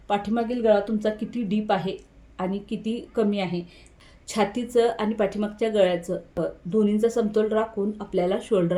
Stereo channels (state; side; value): identical; both; correlation 1.00